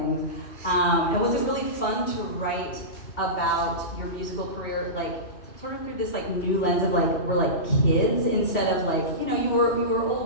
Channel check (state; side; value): late; right; 2.7 ms